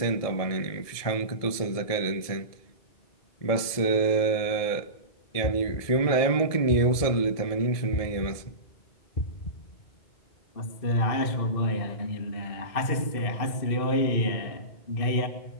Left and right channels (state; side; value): late; right; 1.7 ms